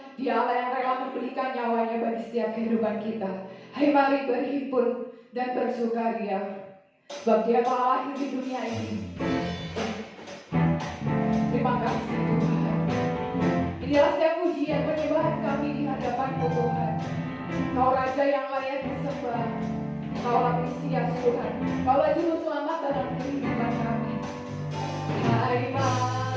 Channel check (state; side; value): identical; both; correlation 1.00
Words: Dia Allah yang rela memberikan nyawanya bagi setiap kehidupan kita. Hai mari berhimpun dan bersukaria. Sebab Dia telah lahir di dunia ini. Terima kasih Tuhan. Inilah setiap pujian penyembahan kami di hadapan-Mu Tuhan. Kau Raja yang layak disembah. Kaulah Mesias Tuhan. Kaulah Juru Selamat dalam kehidupan kami. Hai